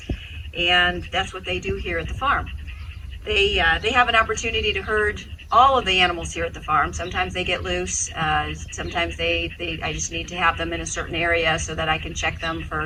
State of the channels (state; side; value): identical; both; correlation 1.00